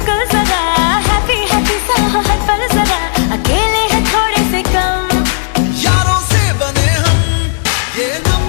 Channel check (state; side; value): silent; right; digital silence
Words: जरा, हैप्पी हैप्पी सा हो हर पल जरा। अकेले हैं थोड़े से कम, यारों से बने हम, ये